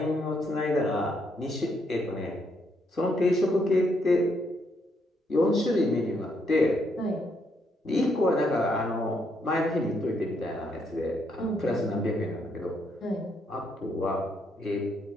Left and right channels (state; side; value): normal; both; correlation 0.75